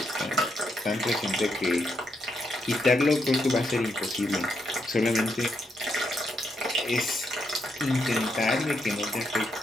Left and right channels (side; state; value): both; normal; correlation 0.80